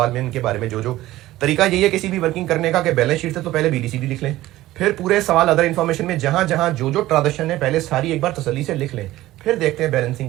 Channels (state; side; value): quieter; left; 16.1 dB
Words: में इनके बारे में जो तरीका यही है किसी भी वर्किंग करने का कि बैलेंस शीट से तो पहले बीडीसीडी लिख लें, फिर पूरे सवाल अदर इंफॉर्मेशन में जहां जहां जो ट्रांजेक्शन है पहले सारी एक बार तसल्ली से लिख लें, फिर देखते हैं